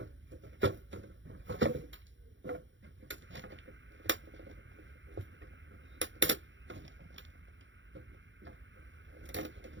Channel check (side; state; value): left; late; 0.55 ms